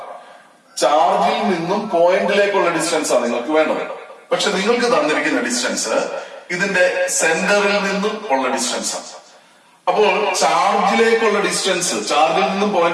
ചാർജിൽ നിന്നും പോയിന്റിലേക്കുള്ള ഡിസ്റ്റൻസ് ആണ് നിങ്ങൾക്ക് വേണ്ടത്. പക്ഷെ നിങ്ങൾക്ക് തന്നിരിക്കുന്ന ഡിസ്റ്റൻസ് ഇതിന്റെ സെന്ററിൽ നിന്നും ഉള്ള ഡിസ്റ്റൻസ് ആണ്. അപ്പോൾ ചാർജിലേക്കുള്ള ഡിസ്റ്റൻസ്, ചാർജിൽ നിന്നും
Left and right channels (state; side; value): identical; both; correlation 1.00